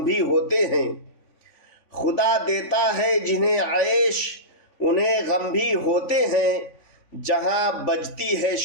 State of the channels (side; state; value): right; late; 3.5 ms